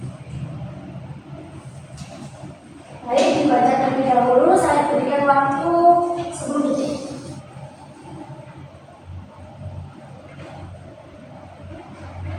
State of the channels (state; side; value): identical; both; correlation 1.00